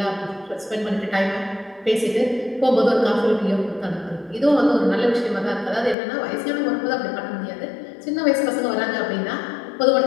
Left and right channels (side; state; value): right; drops out; at 6.0 s